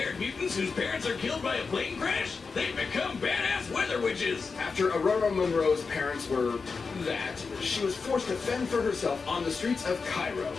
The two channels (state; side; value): quieter; right; 4.8 dB